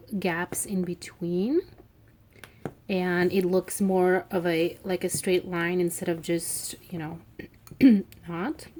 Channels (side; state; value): both; identical; correlation 1.00